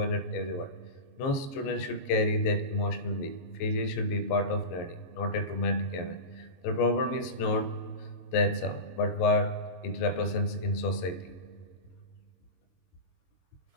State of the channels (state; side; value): late; right; 22 ms